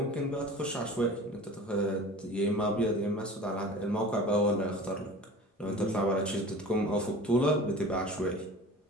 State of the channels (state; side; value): normal; both; correlation 0.39